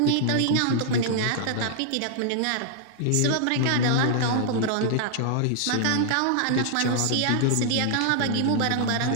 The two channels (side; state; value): both; different; correlation -0.01